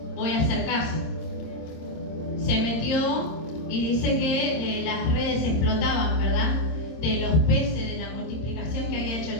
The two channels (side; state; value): right; late; 26 ms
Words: voy a hacer caso. Se metió y dice que las redes explotaban, ¿verdad? De los peces, de la multiplicación que había hecho